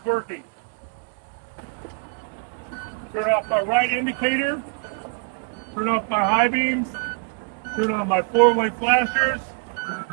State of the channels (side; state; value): left; quieter; 39.4 dB